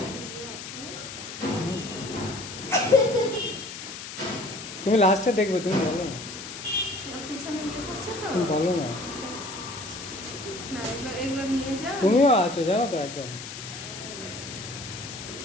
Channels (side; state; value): left; noise; hiss, 10 dB below the sound